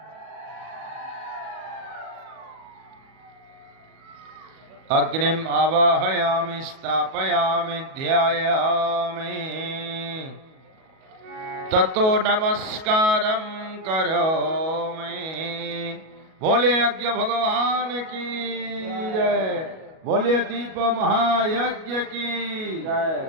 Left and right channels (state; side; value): late; left; 37 ms